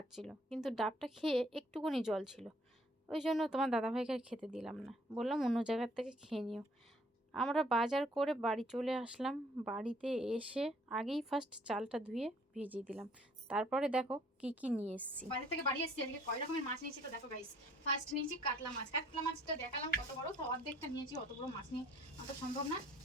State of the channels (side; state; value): both; normal; correlation 0.60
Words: কিন্তু ডাবটা খেয়ে একটুকুনি জল ছিল, ওই জন্য তোমার দাদাভাইকে আর খেতে দিলাম না, বললাম অন্য জায়গার থেকে খেয়ে নিও। আমরা বাজার করে বাড়ি চলে আসলাম। বাড়িতে এসে আগেই ফার্স্ট চালটা ধুয়ে ভিজিয়ে দিলাম, তারপরে দেখো কি কি নিয়ে এসেছি। বাজার থেকে বাড়ি এসেছি, আজকে কয় রকমের মাছ নিয়েছি তো দেখো গাইস। ফার্স্ট নিয়েছি কাতলা মাছ। কাতলা মাছটা দেখালাম কত বড়, তো অর্ধেকটা নিয়েছি, অত বড় মাছ নিয়ে অত সম্ভব না।